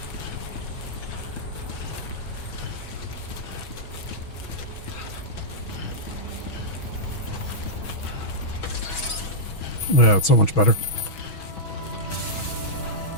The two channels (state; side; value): late; right; 6.2 ms